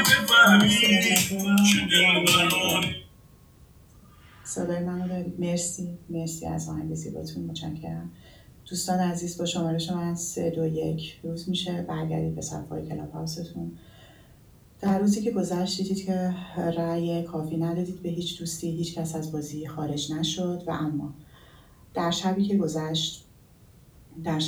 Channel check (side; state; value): both; identical; correlation 1.00